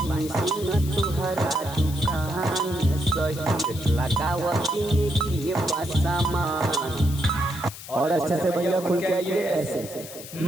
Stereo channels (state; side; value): noise; left; hiss, 13 dB below the sound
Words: और अच्छे से भैया खुल के आइए ऐसे।